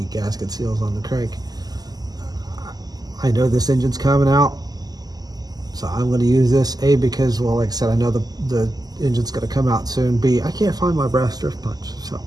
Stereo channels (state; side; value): late; left; 0.19 ms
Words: gasket seals on the crank. I know this engine's coming out, so I'm going to use this, A, because, well, like I said, I know the engine's going to come out soon. B, I can't find my brass drift punch, so